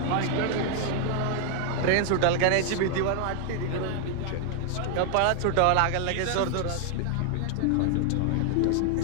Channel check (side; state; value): both; different; correlation 0.00